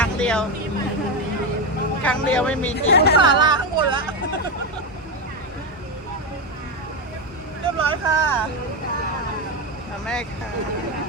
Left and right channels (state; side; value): normal; both; correlation 0.11